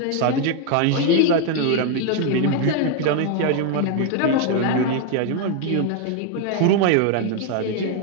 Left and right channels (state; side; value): different; both; correlation 0.01